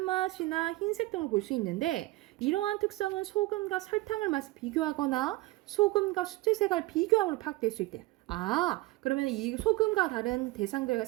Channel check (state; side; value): quieter; left; 19.5 dB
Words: 흰색 등을 볼 수 있는데 이러한 특성은 소금과 설탕을 맛을 비교하거나 소금과 수채색을 비교함으로 파악될 수 있대. 그러면 이 소금과 다른 대상들과